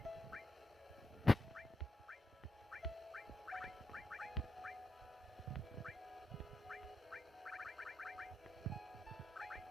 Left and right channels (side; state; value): both; normal; correlation 0.84